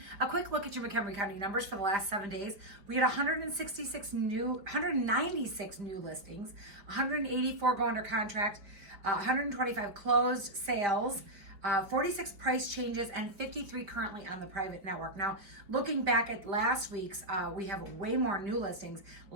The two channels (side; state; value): left; late; 5.0 ms